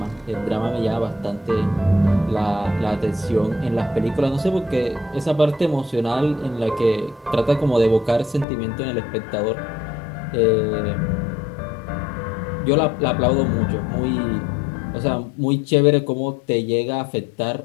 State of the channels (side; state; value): right; drops out; at 8.5 s